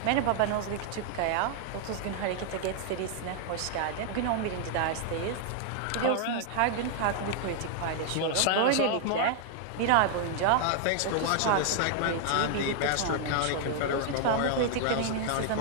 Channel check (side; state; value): both; different; correlation 0.00